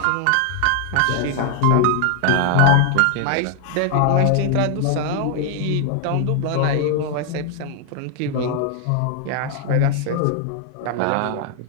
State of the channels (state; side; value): different; both; correlation 0.00